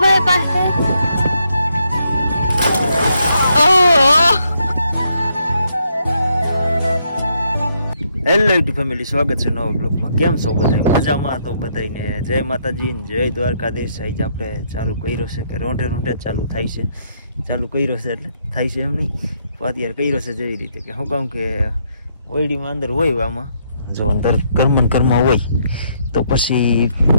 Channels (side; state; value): both; inverted; correlation -0.74